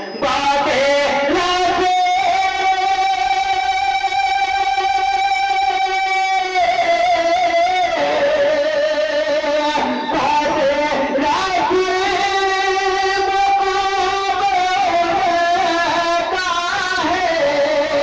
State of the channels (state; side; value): identical; both; correlation 1.00